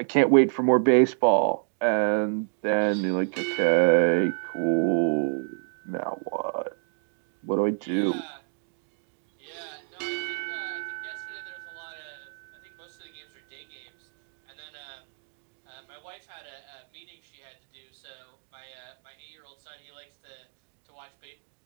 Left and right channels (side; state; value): left; silent; 59 dB below the other